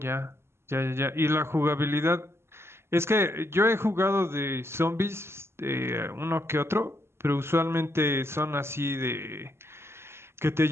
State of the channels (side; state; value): left; late; 0.12 ms